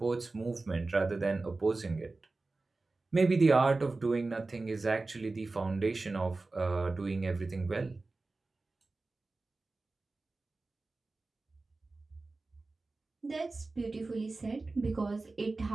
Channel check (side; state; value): left; quieter; 3.5 dB